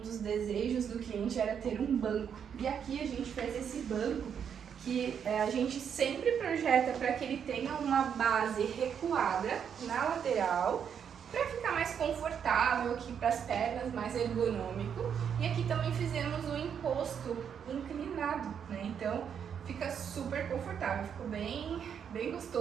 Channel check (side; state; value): left; quieter; 7.8 dB